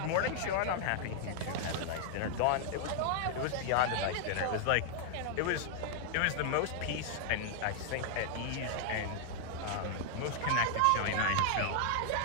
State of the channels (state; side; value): different; both; correlation 0.00